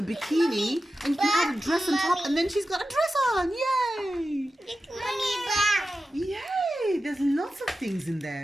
bikini, and you can add a dress on top, and then she's got a dress on. Yay! Mommy, back. Yay! There's lots of things in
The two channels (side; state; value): both; normal; correlation 0.93